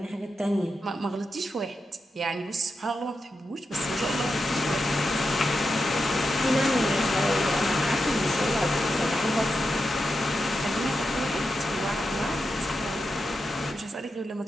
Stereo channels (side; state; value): both; normal; correlation 0.88